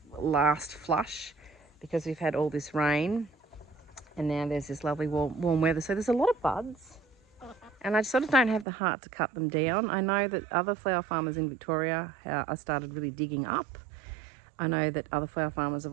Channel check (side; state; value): left; drops out; at 8.7 s